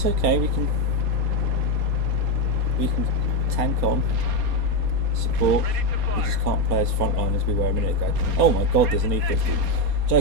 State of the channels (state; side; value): late; left; 4.3 ms